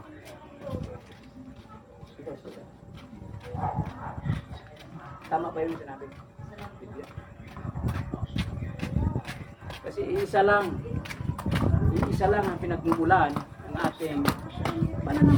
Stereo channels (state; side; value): identical; both; correlation 1.00